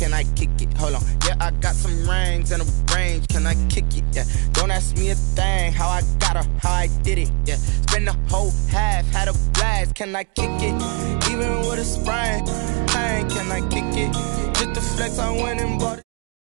I kick it? Hold on. Yeah, I got some rings and a range. Can I kick it? Yeah. Don't ask me a thing. How I got her, how I did it. Yeah. Spend the whole half, had a blast. Can I kick it? Even with a sprain, can I kick it? Just the flex, I went and bought it.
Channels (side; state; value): left; quieter; 34.8 dB